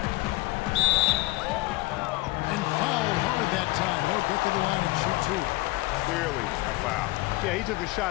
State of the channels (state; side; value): quieter; right; 20.7 dB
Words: And fouled hard that time. He'll get to the line and shoot 2. Clearly a foul. Yeah, he took a